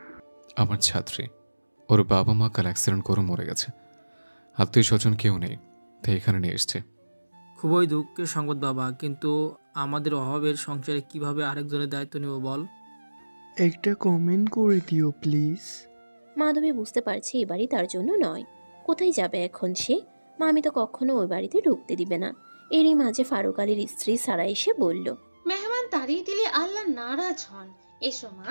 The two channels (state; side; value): inverted; both; correlation -1.00